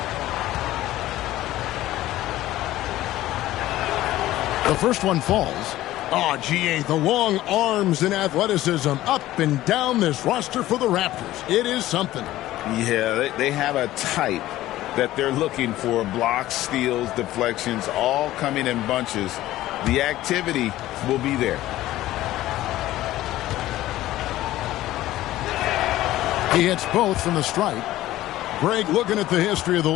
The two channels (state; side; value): quieter; right; 15.3 dB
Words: The first one falls. Oh, GA, the long arms and athleticism up and down this roster for the Raptors. It is something. Yeah, they have a type that they're looking for. Blocks, steals, deflections, all coming in bunches. The activity will be there. He hits both from the stripe. Greg, looking at the history of the